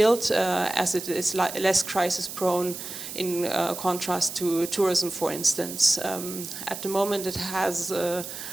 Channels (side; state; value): right; noise; hiss, 9 dB below the sound